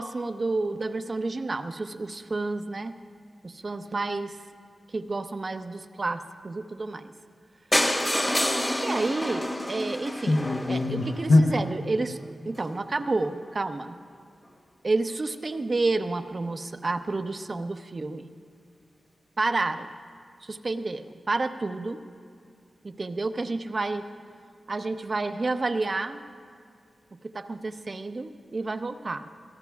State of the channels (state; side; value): normal; both; correlation 0.95